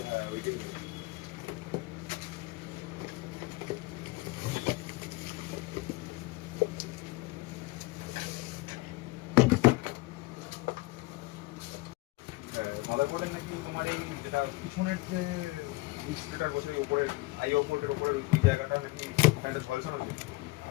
হ্যাঁ ওইটাই। মাদারবোর্ডের নাকি তোমার এই যেটা পিছনের যে ডিসপ্লেটার বসে উপরের আই পোর্টের উপরের ওই জায়গাটা নাকি একটা ঝলসানো ছিল।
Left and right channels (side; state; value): right; quieter; 21.8 dB